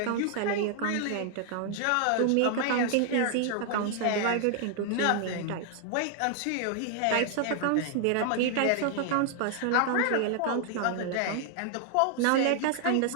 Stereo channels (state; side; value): different; both; correlation 0.00